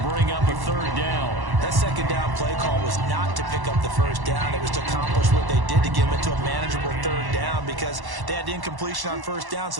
bring up a 3rd down. That 2nd down play call was not to pick up the 1st down. It was to accomplish what they did to get them into a manageable 3rd down because they had incompletion on 1st down, so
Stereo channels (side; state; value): left; late; 1.1 ms